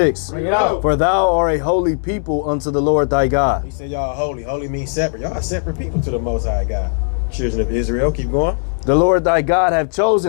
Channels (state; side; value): silent; right; 65 dB below the other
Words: Bring it out. For thou art a holy people unto the Lord thy God. He said y'all holy. Holy means separate. Y'all are separate people to the Most High God. Children of Israel. Keep going. The Lord thy God hath